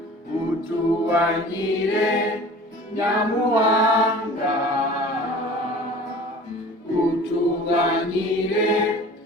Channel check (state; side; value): normal; both; correlation 0.43